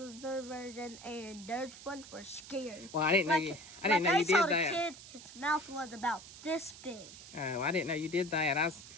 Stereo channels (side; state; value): right; noise; hiss, 16 dB below the sound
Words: version, and those ones were scary. Well, I didn't know you did saw that. the kid, his mouth was about this big. Oh, I didn't know you did that. I was